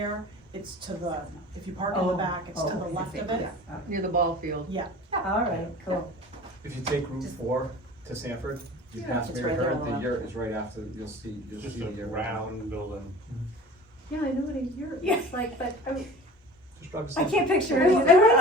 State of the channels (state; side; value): normal; both; correlation 0.41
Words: it's to the, if you park in the back, it's to the left of it. Near the ball field. Yeah. All right, cool. If you take Route 4 to Sanford, you pass It's Mary right there Herd, on the the left. yurt is right after, you'll see Just the a yurt. round building. Yeah, I know what a yurt looks like, but Just drive to I Sanford. can't picture It's it.